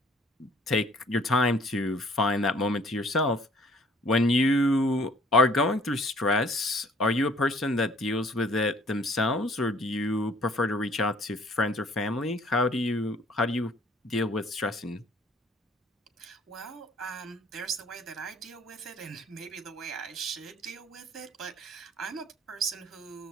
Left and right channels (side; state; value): both; normal; correlation 0.57